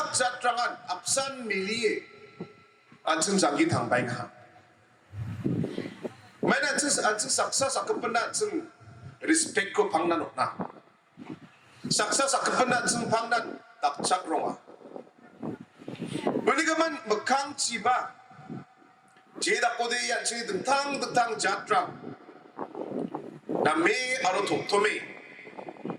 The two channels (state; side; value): identical; both; correlation 1.00